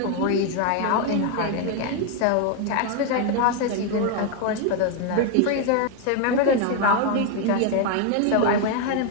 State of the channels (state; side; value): different; both; correlation 0.01